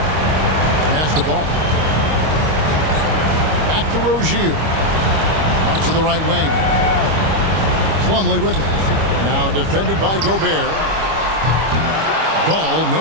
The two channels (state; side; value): late; left; 25 ms